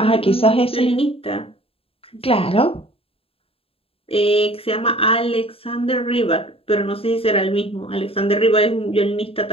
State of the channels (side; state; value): right; late; 0.27 ms